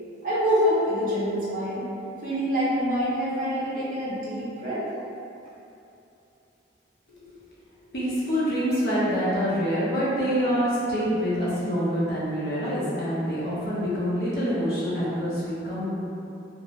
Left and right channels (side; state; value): both; normal; correlation 0.46